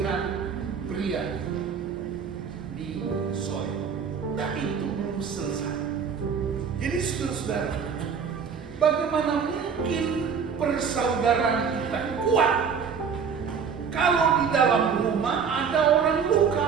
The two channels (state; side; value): quieter; left; 6.4 dB